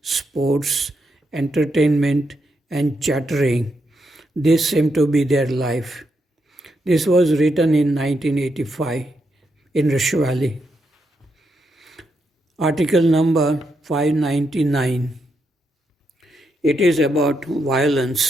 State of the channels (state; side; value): normal; both; correlation 0.82